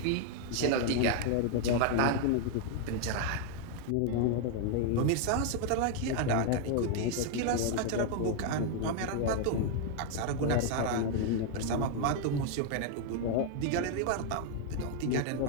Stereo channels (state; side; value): different; both; correlation 0.00